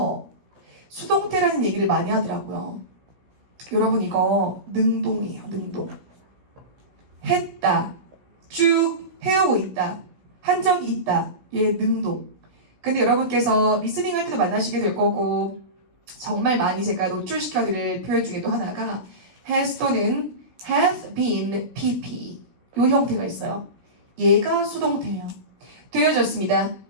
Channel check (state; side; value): late; left; 16 ms